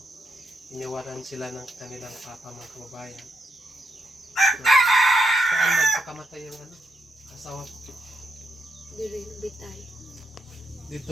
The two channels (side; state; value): both; normal; correlation 0.79